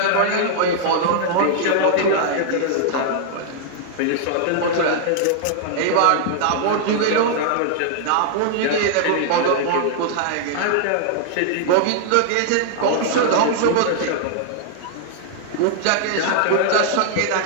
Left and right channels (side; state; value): both; different; correlation -0.01